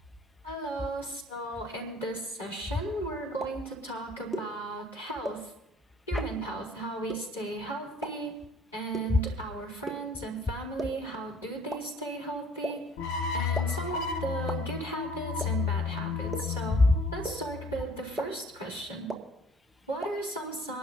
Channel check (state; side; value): normal; both; correlation 0.53